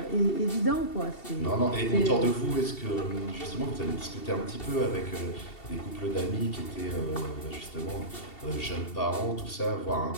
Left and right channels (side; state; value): right; late; 2.7 ms